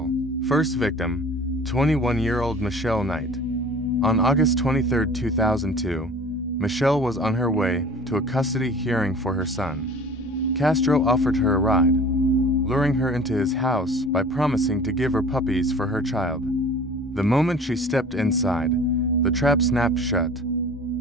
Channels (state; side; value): normal; both; correlation 0.44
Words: First victim, 21-year-old Michelle Knight. On August 23, 2002, Michelle was on her way to a custody hearing for her son. Castro offered her a ride, luring her into his house by promising to give her puppies for her child. The moment she stepped inside, the trap snapped shut.